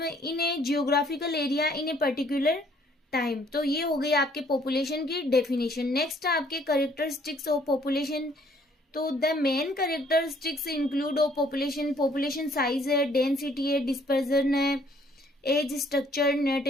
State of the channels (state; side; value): normal; both; correlation 0.62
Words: in A geographical area in a particular time. तो ये हो गई आपके पॉपुलेशन की डेफिनेशन। नेक्स्ट आपके कैरेक्टरिस्टिक्स ऑफ पॉपुलेशन। तो the main characteristics include of population size है, डेंसिटी है, डिस्पर्जन है, एज स्ट्रक्चर,